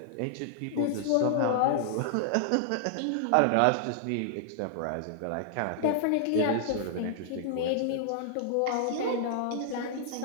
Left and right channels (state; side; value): different; both; correlation -0.01